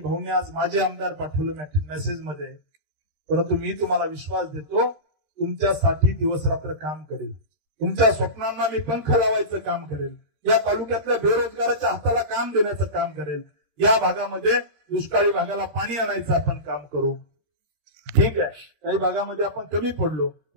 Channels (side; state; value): left; late; 13 ms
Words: आज माझे आमदार पाठवलं मेसेज मध्ये. परंतु मी तुम्हाला विश्वास देतो, तुमच्यासाठी दिवस रात्र काम करेल, तुमच्या स्वप्नांना मी पंख लावायचं काम करेल, या तालुक्यातल्या बेरोजगाराच्या हाताला काम देण्याचं काम करेल, या भागामध्ये दुष्काळी भागाला पाणी आणायचं आपण काम करू. ठीक आहे, काही भागामध्ये आपण कमी पडलो,